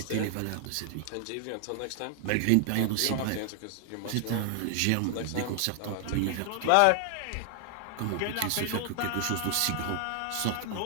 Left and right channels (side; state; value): both; different; correlation 0.00